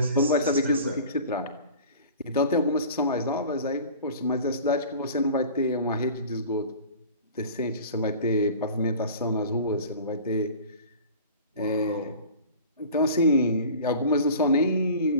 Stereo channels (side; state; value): both; inverted; correlation -0.41